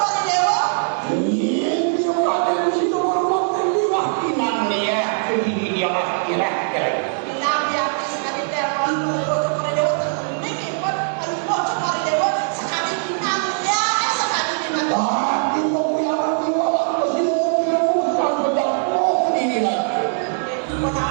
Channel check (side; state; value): left; silent; 62 dB below the other